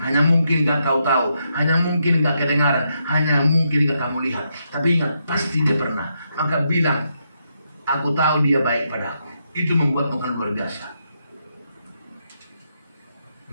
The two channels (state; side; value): inverted; both; correlation -0.81